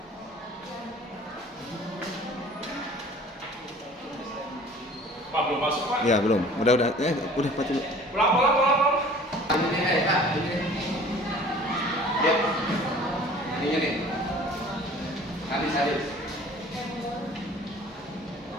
Pak belum masuk Pak. Ya belum. Udah udah Pak dulu. Pulang. Ini Pak, ini. Lihat. Ininya nih. Habis.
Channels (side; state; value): both; normal; correlation 0.48